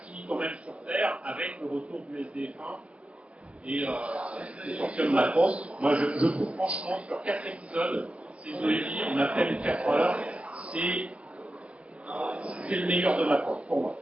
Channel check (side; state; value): left; late; 0.061 ms